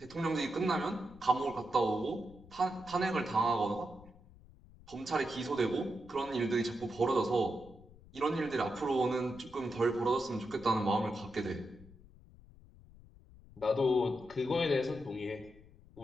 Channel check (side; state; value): left; noise; rumble, 22 dB below the sound